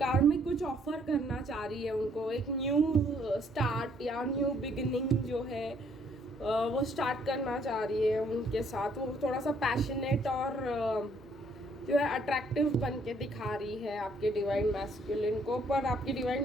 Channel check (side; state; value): both; normal; correlation 0.66